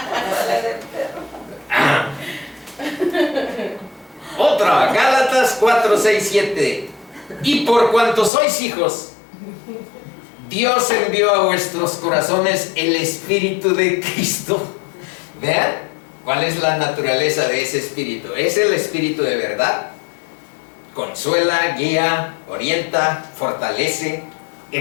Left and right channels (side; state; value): right; drops out; at 8.3 s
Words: Otra, Gálatas 4, 6, 7. Y por cuanto sois hijos, Dios envió a vuestros corazones el Espíritu de Cristo. Vean cuál es la naturaleza de ese Espíritu. Es el Espíritu de verdad. Consuela, guía, orienta, fortalece,